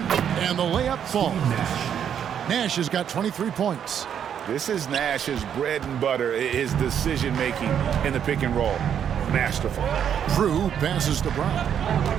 the layup falls. Nash has got 23 points. This is Nash's bread and butter, his decision-making in the pick and roll. Masterful. Drew passes to Brown.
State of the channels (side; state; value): left; quieter; 8.7 dB